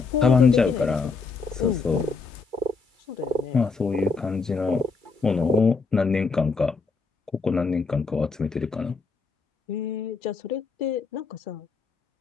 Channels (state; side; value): quieter; right; 4.5 dB